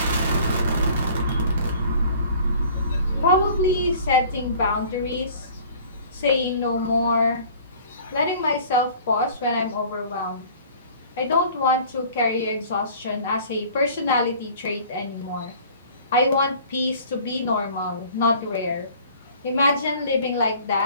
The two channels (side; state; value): both; inverted; correlation -0.49